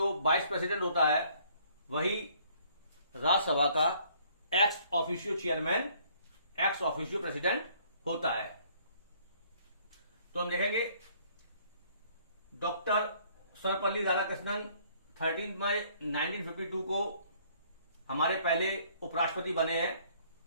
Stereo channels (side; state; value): both; inverted; correlation -0.61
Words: वाइस प्रेसिडेंट होता है वही राज्यसभा का ex officio chairman, ex officio president होता है। तो हम देखेंगे डॉक्टर सर्वपल्ली राधाकृष्णन 13 मई 1952 को हमारे पहले उपराष्ट्रपति बने हैं,